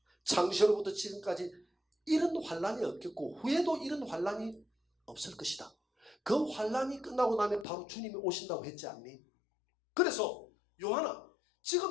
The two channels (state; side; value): drops out; right; at 7.7 s